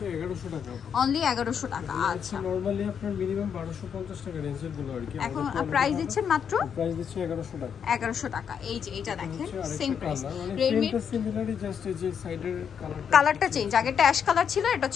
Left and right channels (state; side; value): quieter; right; 7.5 dB